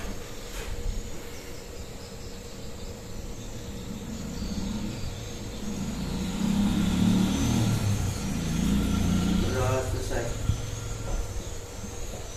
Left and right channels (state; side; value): identical; both; correlation 1.00